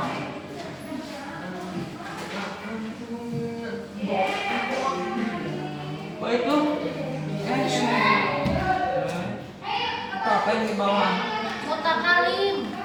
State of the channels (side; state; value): both; identical; correlation 1.00